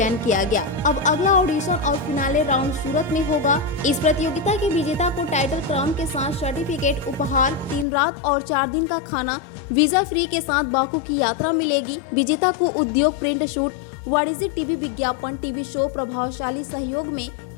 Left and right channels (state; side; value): drops out; right; at 7.9 s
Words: किया गया। अब अगला ऑडिशन और फिनाले राउंड सूरत में होगा। इस प्रतियोगिता के विजेता को टाइटल क्राउन के साथ सर्टिफिकेट, उपहार, 3 रात और 4 दिन का खाना, वीजा फ्री के साथ बाकू की यात्रा मिलेगी। विजेता को उद्योग, प्रिंट शूट, वाणिज्यिक टीवी विज्ञापन, टीवी शो, प्रभावशाली सहयोग में